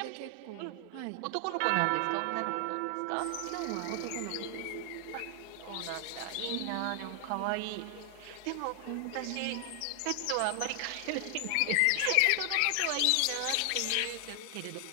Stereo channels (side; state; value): both; different; correlation 0.00